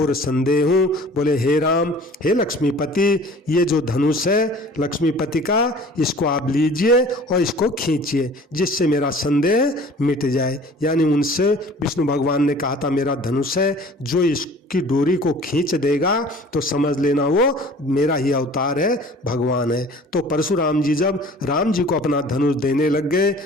संदेहूँ। बोले हे राम, हे लक्ष्मीपति, ये जो धनुष है लक्ष्मीपति का, इसको आप लीजिए और इसको खींचिए जिससे मेरा संदेह मिट जाए। यानी उनसे विष्णु भगवान ने कहा था मेरा धनुष है, जो इसकी डोरी को खींच देगा तो समझ लेना वो मेरा ही अवतार है, भगवान है। तो परशुराम जी जब राम जी को अपना धनुष देने लग गए,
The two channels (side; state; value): both; normal; correlation 0.47